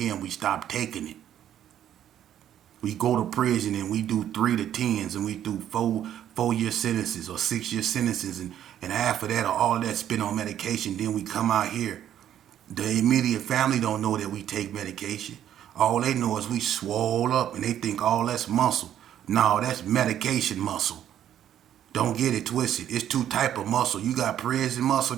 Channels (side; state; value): left; quieter; 10.7 dB